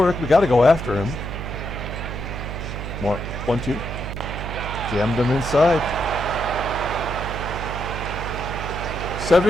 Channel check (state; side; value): noise; right; hum, 6 dB below the sound